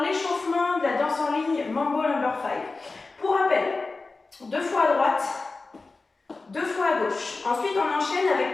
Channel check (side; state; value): right; quieter; 3.7 dB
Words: l'échauffement de la danse en ligne Mambo Number 5. Pour rappel, 2 fois à droite, 2 fois à gauche. Ensuite, on enchaîne